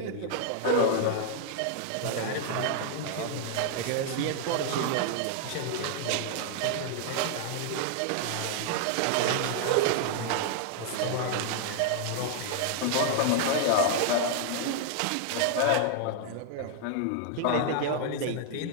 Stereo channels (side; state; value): both; different; correlation 0.00